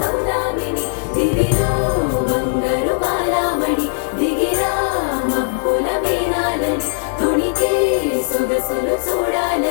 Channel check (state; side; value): silent; right; digital silence